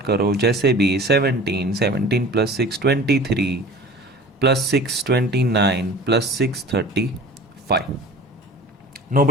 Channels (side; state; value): both; normal; correlation 0.42